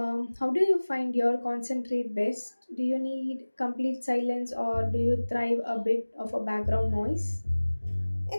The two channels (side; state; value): both; inverted; correlation -1.00